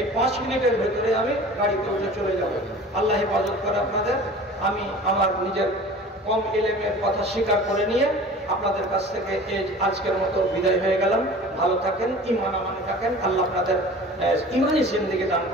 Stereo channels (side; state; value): both; normal; correlation 0.41